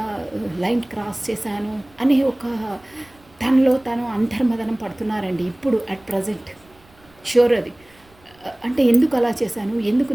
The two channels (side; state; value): right; noise; rumble, 29 dB below the sound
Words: లైన్ క్రాస్ చేశాను అనే ఒక తనలో తను అంతర్మదనం పడుతున్నారండి ఇప్పుడు అట్ ప్రజెంట్. షూర్ అది అంటే ఎందుకు అలా చేశాను, ఎందుకు